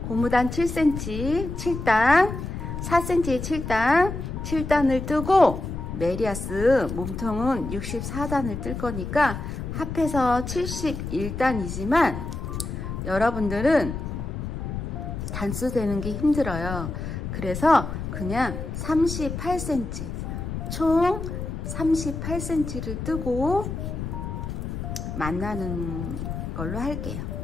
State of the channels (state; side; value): noise; left; rumble, 6 dB below the sound